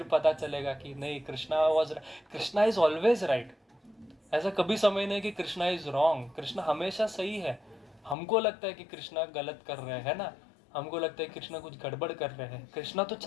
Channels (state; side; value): drops out; right; at 8.2 s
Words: पता चलेगा कि नहीं, कृष्णा इज ऑलवेज राइट। ऐसा कभी समय नहीं कि कृष्णा इज रॉन्ग, कृष्णा हमेशा सही है। हमको लगता है कि कृष्णा गलत कर रहे हैं ना, हमको लगता है कृष्णा कुछ गड़बड़ कर रहे हैं। कृष्णा तो